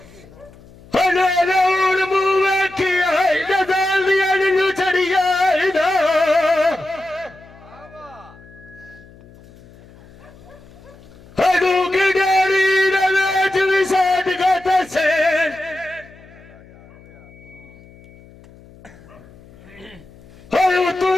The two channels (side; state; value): left; noise; hum, 23 dB below the sound